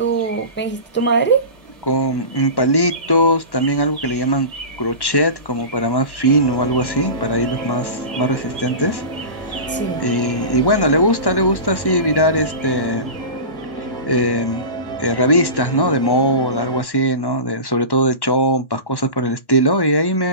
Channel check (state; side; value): late; right; 1.1 ms